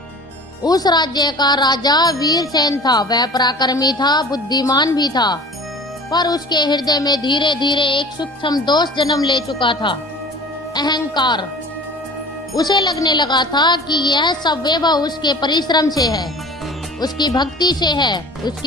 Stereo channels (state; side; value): normal; both; correlation 0.42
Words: उस राज्य का राजा वीरसेन था। वह पराक्रमी था, बुद्धिमान भी था, पर उसके हृदय में धीरे धीरे एक सूक्ष्म दोष जन्म ले चुका था, अहंकार। उसे लगने लगा था कि यह सब वैभव उसके परिश्रम से है, उसकी भक्ति से है,